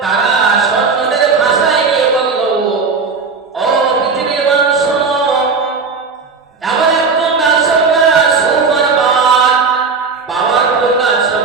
তারা সৈন্যদের ভাষায় নিয়ে বলল, ও পৃথিবীর মানুষ শোনো, এমন একজন রাজসম্রাট সুমারবাদ, পাওয়ারফুল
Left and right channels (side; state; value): left; quieter; 4.8 dB